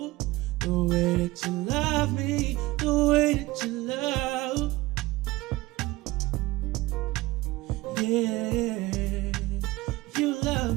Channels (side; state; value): left; quieter; 19.6 dB